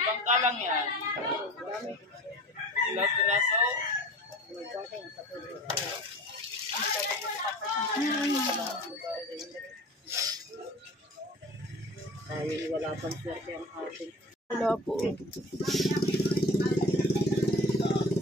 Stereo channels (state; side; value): normal; both; correlation 0.39